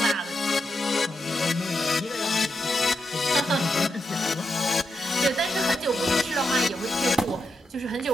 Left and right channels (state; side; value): normal; both; correlation 0.86